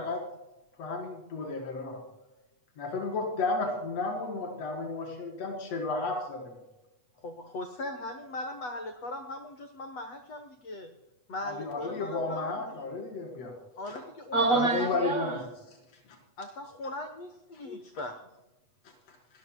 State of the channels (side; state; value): right; late; 8.1 ms